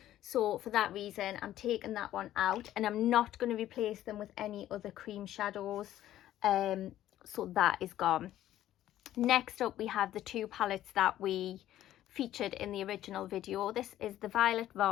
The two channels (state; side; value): quieter; right; 13.0 dB